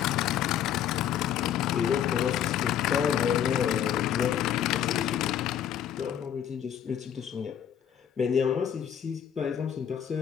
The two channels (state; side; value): quieter; right; 9.5 dB